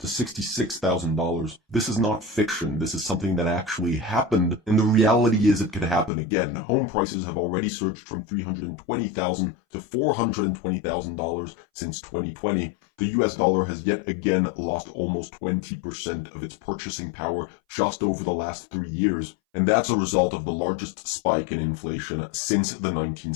$66,000. This is not fiction. This is something that actually happened, and the reality is it could happen again. Home prices have already surged from $320,000 to $420,000 since 2020. The US dollar has yet again lost almost 20% of its purchasing power just over the last 3 years, and that's a result of the largest spike in inflation since the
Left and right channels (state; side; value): drops out; right; at 6.1 s